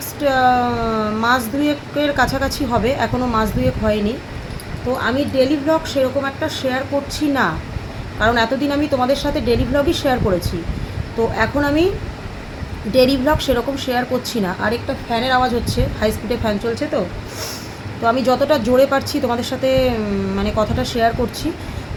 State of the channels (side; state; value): both; identical; correlation 1.00